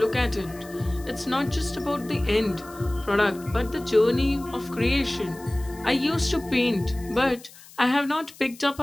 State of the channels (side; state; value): left; noise; hiss, 21 dB below the sound